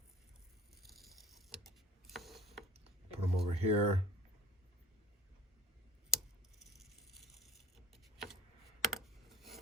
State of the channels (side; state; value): both; normal; correlation 0.46